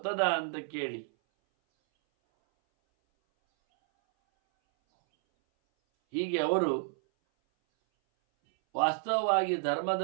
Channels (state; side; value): silent; left; 58 dB below the other